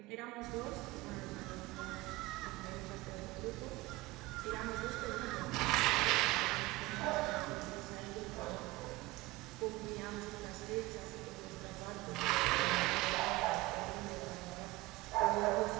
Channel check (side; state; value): left; quieter; 20.3 dB